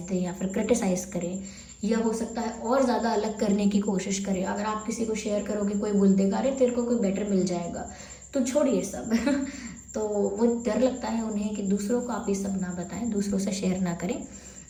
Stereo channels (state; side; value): identical; both; correlation 1.00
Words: दें, या फिर क्रिटिसाइज़ करें, या हो सकता है और ज़्यादा अलग करने की कोशिश करें। अगर आप किसी को शेयर करोगे, कोई बोल देगा अरे तेरे को कोई बेटर मिल जाएगा, तो छोड़िए सब तो वो डर लगता है उन्हें कि दूसरों को आप ये सब ना बताएं, दूसरों से शेयर ना करें।